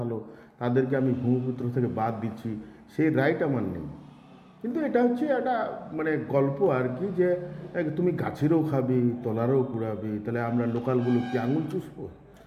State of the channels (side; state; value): both; identical; correlation 1.00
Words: তাদেরকে আমি ভূমিপুত্র থেকে বাদ দিচ্ছি, সেই রাইট আমার নেই। কিন্তু এটা হচ্ছে একটা মানে গল্প আর কি, যে তুমি গাছেরও খাবে, তলারও কুড়াবে, তাহলে আমরা লোকালগুলো কি আঙুল চুষবো,